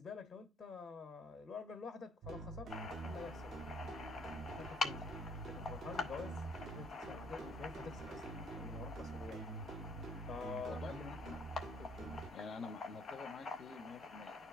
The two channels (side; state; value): both; normal; correlation 0.65